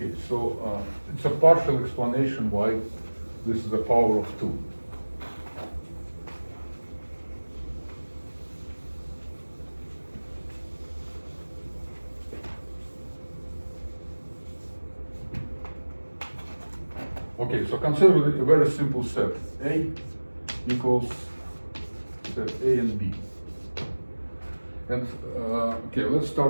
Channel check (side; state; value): both; inverted; correlation -1.00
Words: so it's a partial explanation why this is a power of 2. Okay, so consider a very simple set. A equals set A and B. And okay, let's